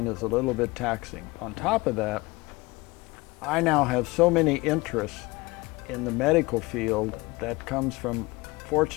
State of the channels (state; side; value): quieter; right; 22.9 dB